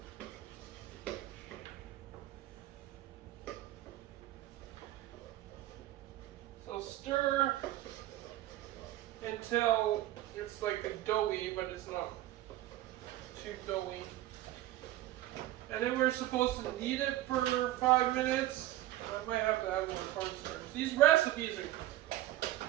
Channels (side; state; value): left; quieter; 15.2 dB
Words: Stir until it's like a doughy, but it's not too doughy. And then we're supposed to knead it for 5 minutes. I might have to add more cornstarch. These recipes